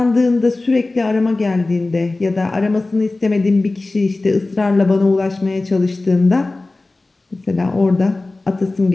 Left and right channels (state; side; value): quieter; right; 3.2 dB